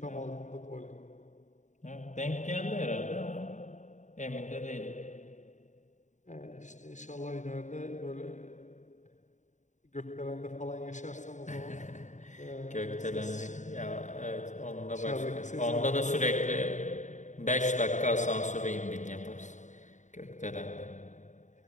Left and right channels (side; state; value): right; late; 0.35 ms